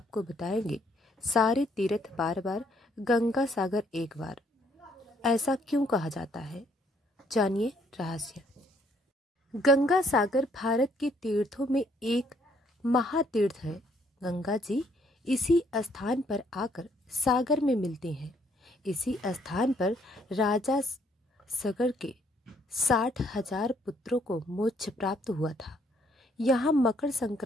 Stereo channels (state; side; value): normal; both; correlation 0.67